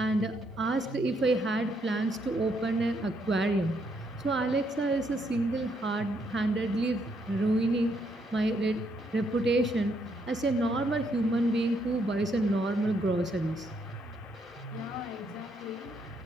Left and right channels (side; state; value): both; normal; correlation 0.74